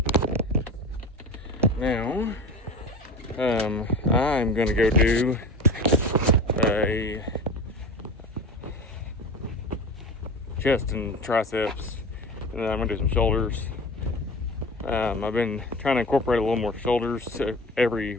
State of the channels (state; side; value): normal; both; correlation 0.32